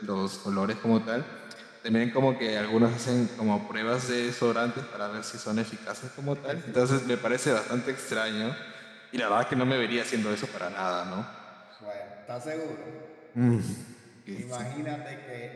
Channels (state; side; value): identical; both; correlation 1.00